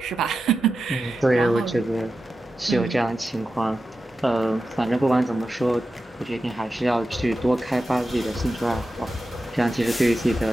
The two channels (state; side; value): normal; both; correlation 0.91